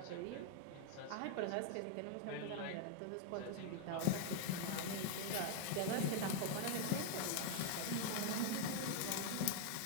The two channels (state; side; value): different; both; correlation 0.00